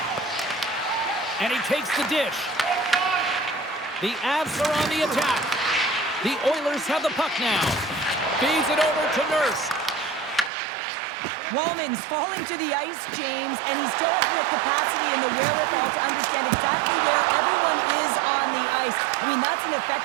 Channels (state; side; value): drops out; left; at 10.5 s